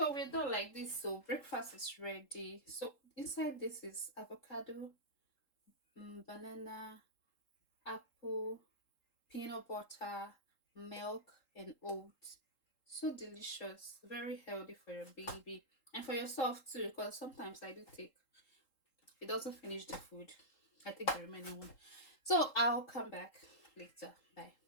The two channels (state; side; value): late; right; 3.8 ms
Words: we're done like this. So breakfast is ready. So inside this is avocado, banana, apple, peanut butter, milk, and oats. So delicious, very healthy for your baby and for yourself too. Because sometimes I do take it doesn't finish the food. I take the remaining one. So I'll come back later. Bye.